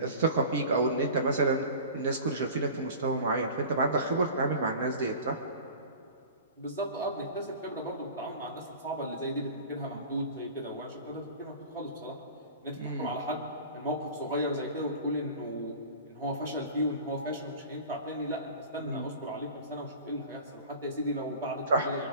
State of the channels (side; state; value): both; inverted; correlation -0.38